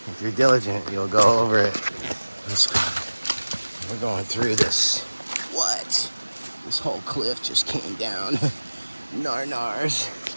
if you're diligent, you'll go over it. Let's go. We're going through this. What? This whole cliff just came down. Nars.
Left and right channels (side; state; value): both; inverted; correlation -1.00